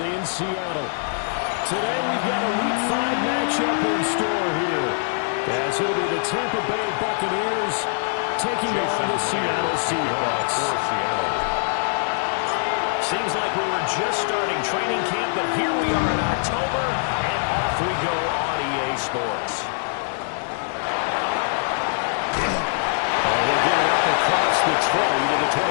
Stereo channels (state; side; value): silent; right; 63 dB below the other